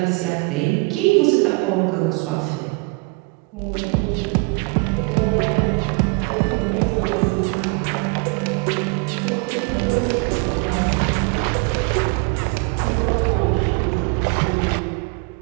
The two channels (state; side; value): quieter; left; 30.1 dB